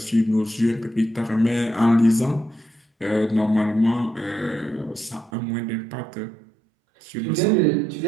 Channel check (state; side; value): drops out; left; at 5.3 s